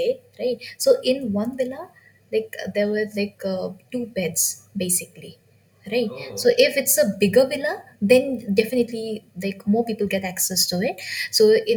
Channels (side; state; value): both; identical; correlation 1.00